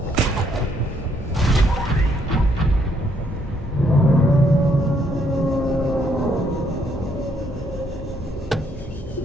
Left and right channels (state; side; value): normal; both; correlation 0.71